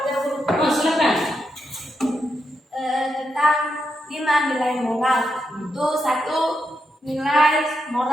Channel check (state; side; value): normal; both; correlation 0.83